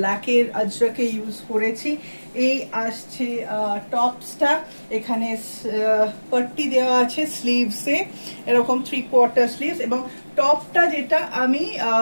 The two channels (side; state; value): both; inverted; correlation -1.00